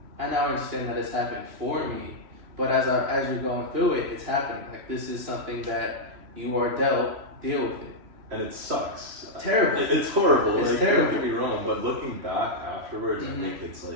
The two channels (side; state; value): left; late; 3.0 ms